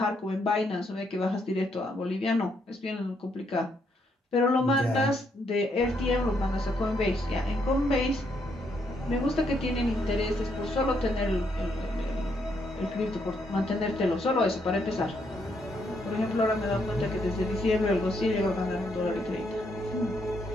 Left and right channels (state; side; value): normal; both; correlation 0.74